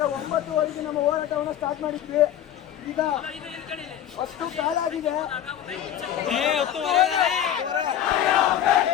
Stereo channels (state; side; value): quieter; right; 10.6 dB